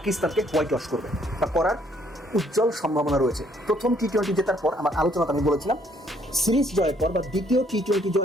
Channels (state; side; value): normal; both; correlation 0.65